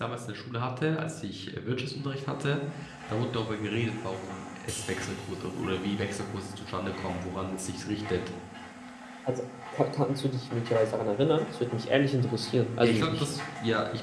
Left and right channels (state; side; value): identical; both; correlation 1.00